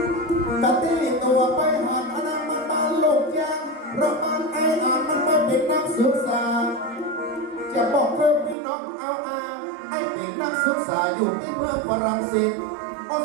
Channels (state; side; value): drops out; left; at 8.6 s